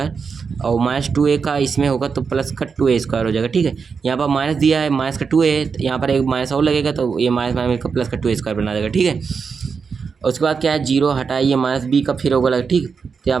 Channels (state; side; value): quieter; left; 5.6 dB